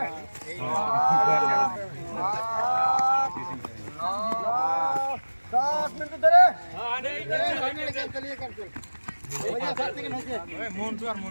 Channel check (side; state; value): both; inverted; correlation -1.00